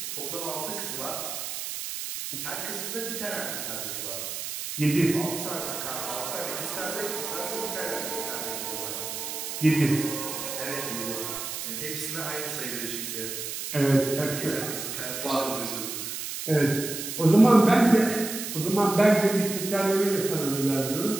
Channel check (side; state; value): right; noise; hiss, 6 dB below the sound